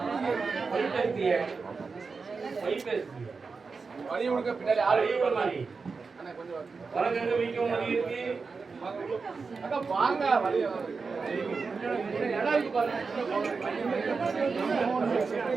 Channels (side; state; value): left; quieter; 4.7 dB